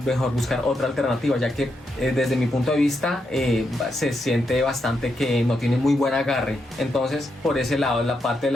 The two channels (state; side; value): normal; both; correlation 0.82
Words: buscar otra alternativa, ya que desde mi punto de vista se siente bastante que no tiene muy buen agarre. Entonces por ese lado la parte de